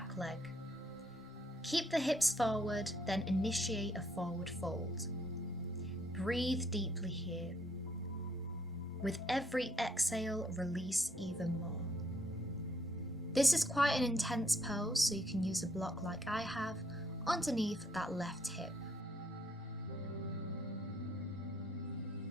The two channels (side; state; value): both; normal; correlation 0.69